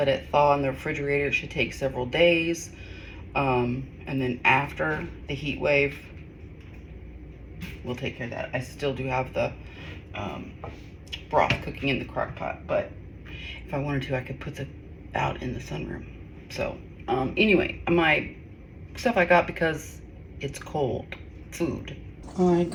it thaw in the refrigerator. It should take several days. And then after the heat wave, we'll take care of that. I still do have the broth cooking in the crock pot, but if I wanted to, I could put it out in the sunroom. So anyway, my stuff I got because it's cold food. I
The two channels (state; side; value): identical; both; correlation 1.00